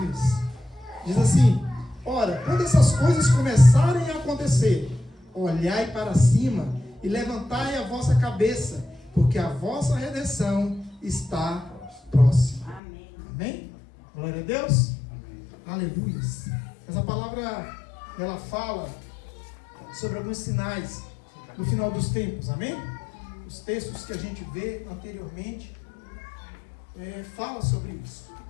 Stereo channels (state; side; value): drops out; right; at 12.8 s